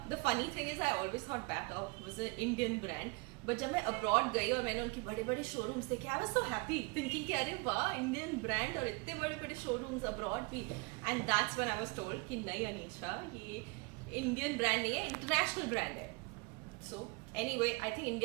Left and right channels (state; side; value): quieter; left; 28.8 dB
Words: the funny thing is I always thought Bata was an Indian brand. But जब मैं abroad गई और मैंने उनके बड़े बड़े showrooms देखे, I was so happy thinking कि अरे वाह Indian brand और इतने बड़े बड़े showrooms abroad भी. And that's when I was told कि नहीं अनीशा, ये Indian brand नहीं है, international brand है. So anyway, I think